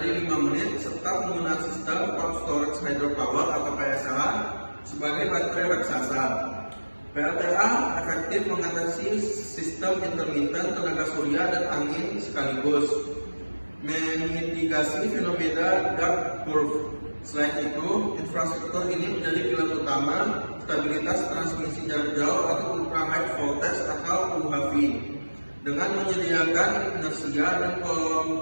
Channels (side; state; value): both; inverted; correlation -1.00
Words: 5 menit, serta penggunaan sistem pump storage hydropower atau PSH sebagai baterai raksasa. PLTA efektif mengatasi sistem intermittent tenaga surya dan angin sekaligus, memitigasi fenomena dark curve. Selain itu, infrastruktur ini menjadi pilar utama stabilitas transmisi jarak jauh atau ultra high voltage atau UHV, dengan menyediakan inersia dan